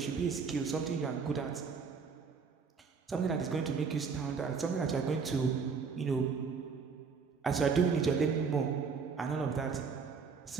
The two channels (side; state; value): left; quieter; 5.5 dB